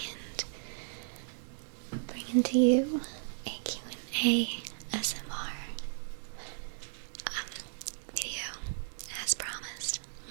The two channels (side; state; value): left; silent; digital silence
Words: bringing to you a Q&A SMR video, as promised.